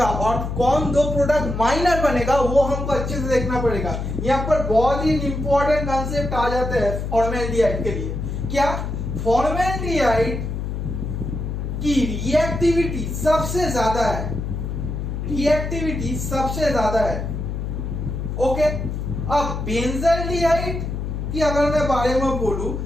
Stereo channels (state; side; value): noise; left; hum, 4 dB below the sound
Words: और कौन 2 प्रोडक्ट माइनर बनेगा, वो हमको अच्छे से देखना पड़ेगा। यहाँ पर बहुत ही इंपॉर्टेंट कॉन्सेप्ट आ जाते हैं फॉर्मल्डिहाइड के लिए। क्या? फॉर्मेल्डिहाइड की रिएक्टिविटी सबसे ज्यादा है, रिएक्टिविटी सबसे ज्यादा है। ओके, अब बेंजाल्डिहाइड की अगर मैं बारे में बोलूं,